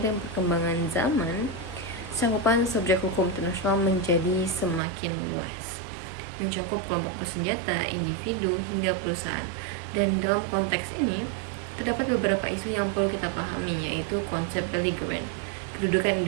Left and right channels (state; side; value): drops out; left; at 4.8 s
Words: perkembangan zaman, cakupan subjek hukum internasional menjadi semakin luas, mencakup kelompok bersenjata, individu, hingga perusahaan. Dan dalam konteks ini, terdapat beberapa isu yang perlu kita pahami, yaitu konsep belligerent, kedudukan